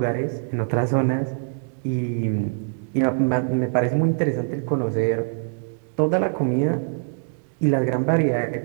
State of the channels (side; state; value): left; silent; digital silence